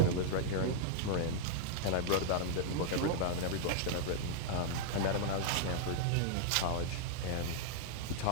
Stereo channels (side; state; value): both; different; correlation -0.01